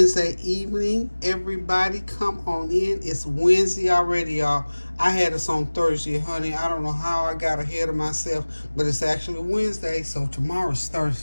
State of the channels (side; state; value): both; inverted; correlation -1.00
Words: evening, everybody. Come on in. It's Wednesday already, y'all. I had us on Thursday, honey. I don't know how I got ahead of myself, but it's actually Wednesday, so tomorrow's